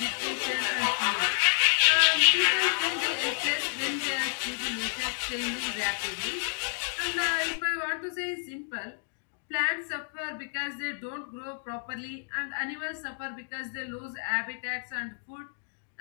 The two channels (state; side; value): silent; right; digital silence